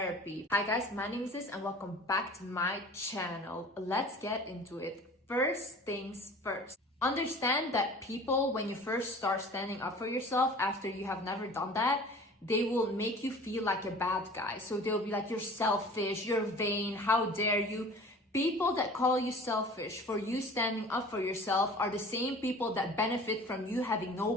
Hi guys, my name is Liz and welcome back to my channel. Let's get into it. First things first. Understand that people, when you first start standing up for yourself after you have never done that, they will make you feel like a bad guy. So they'll be like, you're selfish, you're vain, how dare you? People that call you selfish for you standing up for yourself are the same people that benefit from you having no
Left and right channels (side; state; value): both; normal; correlation 0.43